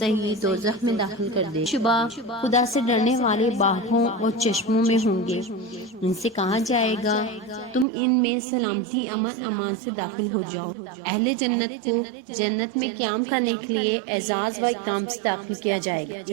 ہی دوزخ میں داخل کر دے۔ شبہ خدا سے ڈرنے والے باغوں اور چشموں میں ہوں گے، ان سے کہا جائے گا تم ان میں سلامتی امن امان سے داخل ہو جاؤ۔ اہل جنت کو جنت میں قیام کرنے کے لیے اعزاز و اکرام سے داخل کیا جائے گا۔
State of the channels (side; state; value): left; drops out; at 7.9 s